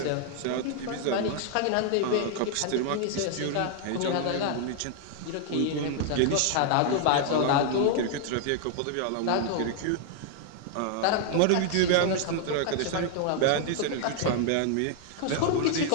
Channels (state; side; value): different; both; correlation 0.00